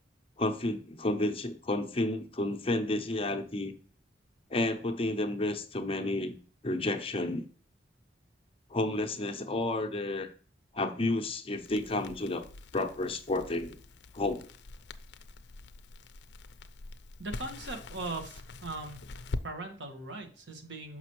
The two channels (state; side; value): normal; both; correlation 0.50